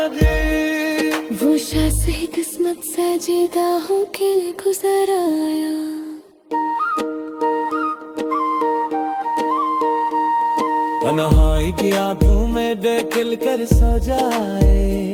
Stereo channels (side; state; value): both; identical; correlation 1.00